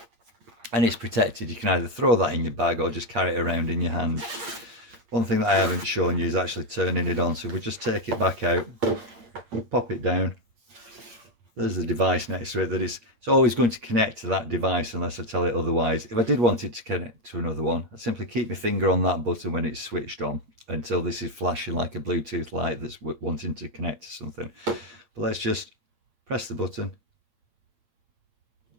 And it's protected. You can either throw that in your bag or just carry it around in your hand. One thing that I haven't shown you is actually turning it on. So if we just take it back out, pop it down. There's the device next to it that it's always going to connect to that device unless I tell it otherwise. If I did want it to connect to another one, I'd simply keep my finger on that button when it's switched on until this is flashing like a Bluetooth light that's wanting to connect to something. But let's just press the button.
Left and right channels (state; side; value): late; left; 8.8 ms